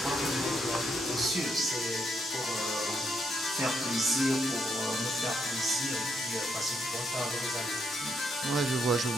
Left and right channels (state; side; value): normal; both; correlation 0.77